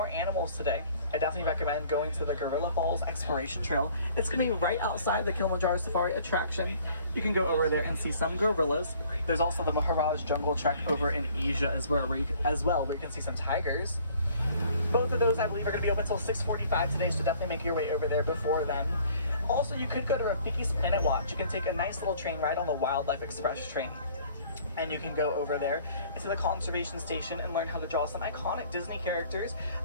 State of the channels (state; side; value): inverted; both; correlation -0.55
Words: animals today, I definitely recommend going to the Gorilla Falls Exploration Trail. It's going to be right outside the Kilimanjaro Safari attraction. You can go over there and see some gorillas. There's also the Maharaj Jungle Trek over in Asia as well, where you can see some tigers. Both of those, I believe, are going to be open until 6:45 today, so definitely make your way over there before then. Also, you could go to Rafiki's Planet Watch. You can take a nice little train ride on the Wildlife Express train. And you can go over there into the conservation station and learn how to draw some iconic Disney characters.